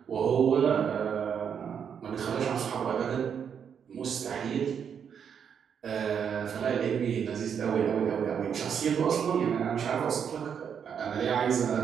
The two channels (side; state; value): left; quieter; 7.6 dB